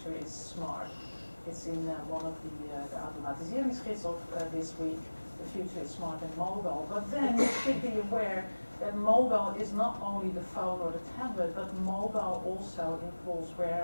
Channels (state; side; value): inverted; both; correlation -1.00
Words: is smart. It's in one of the automatiseringsgids of this week. The future is smart and mobile. But then you should be aware that mobile is not only the phone or the tablet, but mobile also involves